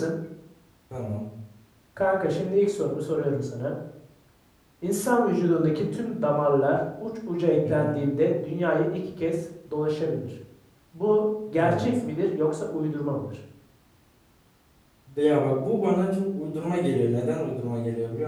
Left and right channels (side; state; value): both; identical; correlation 1.00